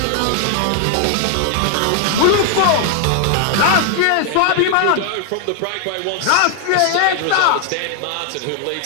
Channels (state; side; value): different; both; correlation 0.00